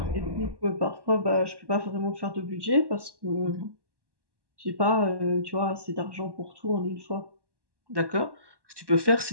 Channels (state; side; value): late; left; 1.1 ms